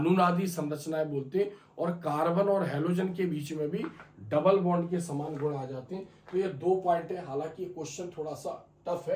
संरचनाएं बोलते हैं, और कार्बन और हेलोजन के बीच में भी डबल बॉन्ड के समान गुण आ जाते हैं। तो ये 2 पॉइंट है, हालांकि क्वेश्चन थोड़ा सा टफ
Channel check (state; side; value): identical; both; correlation 1.00